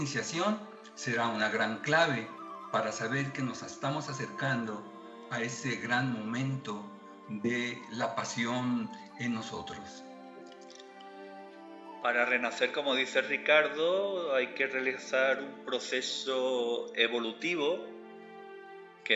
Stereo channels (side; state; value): both; identical; correlation 1.00